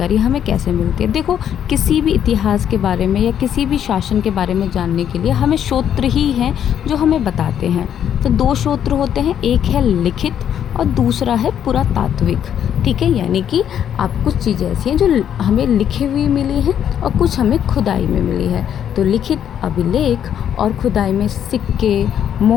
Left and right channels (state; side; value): quieter; right; 9.4 dB